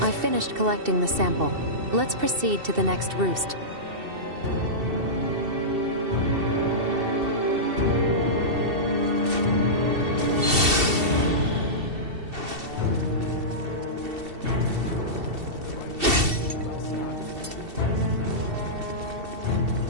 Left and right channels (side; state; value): left; late; 2.7 ms